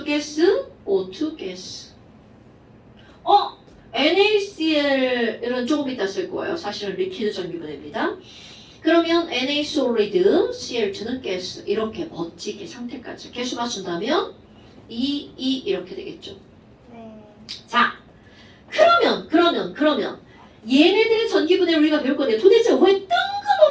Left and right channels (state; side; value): identical; both; correlation 1.00